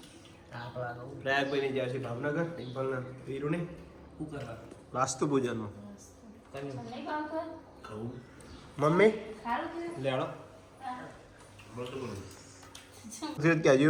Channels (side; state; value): both; identical; correlation 1.00